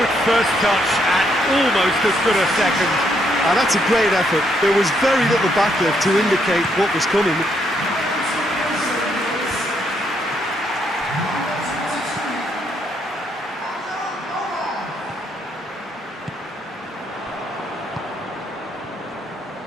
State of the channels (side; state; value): both; normal; correlation 0.74